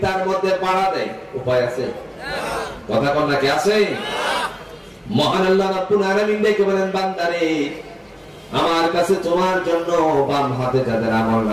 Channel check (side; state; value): both; identical; correlation 1.00